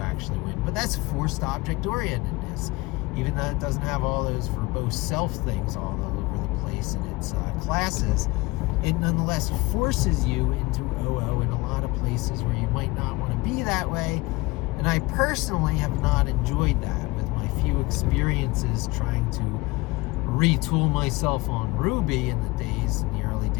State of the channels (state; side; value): quieter; right; 22.6 dB